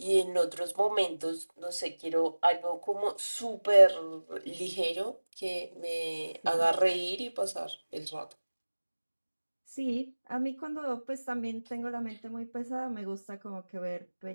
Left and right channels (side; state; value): both; inverted; correlation -1.00